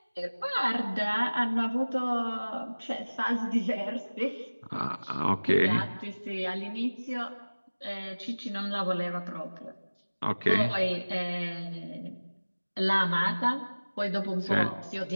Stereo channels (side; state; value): both; inverted; correlation -1.00